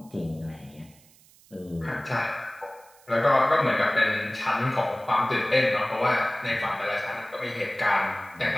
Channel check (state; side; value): noise; right; hiss, 27 dB below the sound